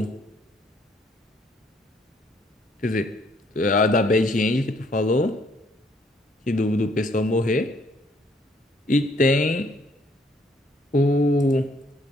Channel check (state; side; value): normal; both; correlation 0.66